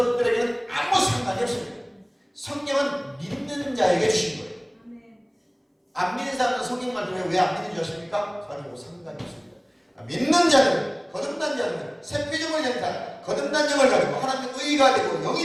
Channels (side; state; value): both; identical; correlation 1.00